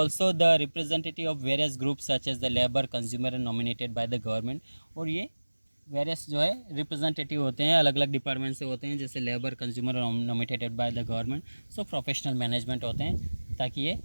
the representative of various group such as the labour, consumer and nominated by the government. और ये various जो है representative होते हैं, अलग अलग डिपार्टमेंट से होते हैं, जैसे लेबर, कंज्यूमर और nominated by the government. So professional management होते हैं, ताकि ये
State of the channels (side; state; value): both; inverted; correlation -1.00